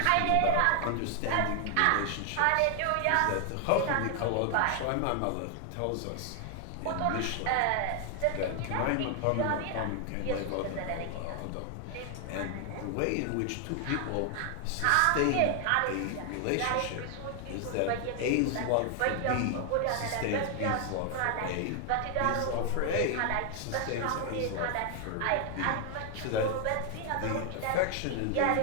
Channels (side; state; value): both; different; correlation 0.00